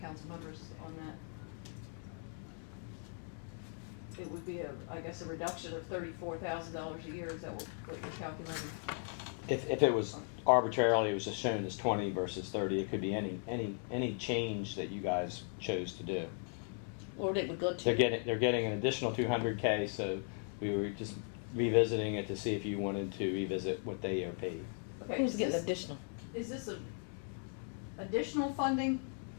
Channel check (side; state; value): right; silent; 53 dB below the other